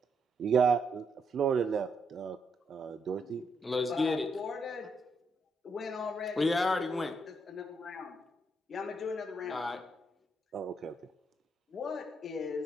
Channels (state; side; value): normal; both; correlation 0.77